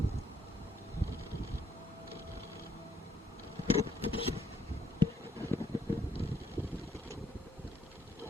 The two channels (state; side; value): normal; both; correlation 0.71